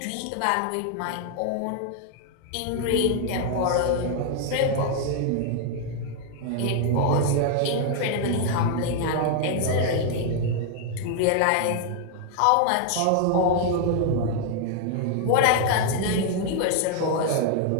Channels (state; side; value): different; both; correlation 0.00